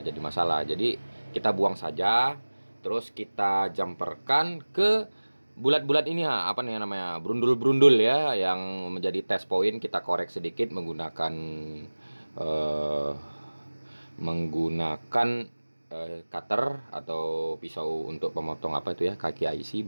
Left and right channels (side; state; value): both; inverted; correlation -1.00